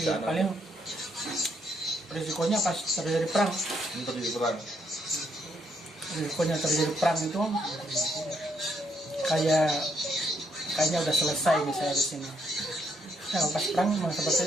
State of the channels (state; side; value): normal; both; correlation 0.74